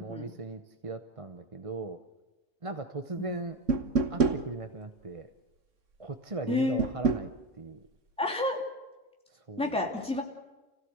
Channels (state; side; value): normal; both; correlation 0.19